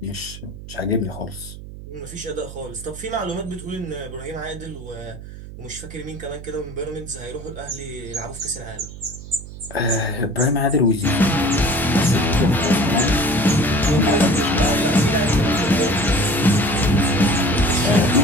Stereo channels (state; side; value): noise; right; hum, 13 dB below the sound